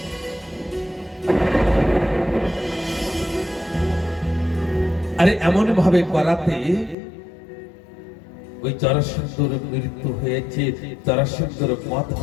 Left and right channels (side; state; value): right; drops out; at 7.0 s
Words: আরে এমন ভাবে করাতে ওই জরাসন্ধর মৃত্যু হয়েছে, জরাসন্ধর বধ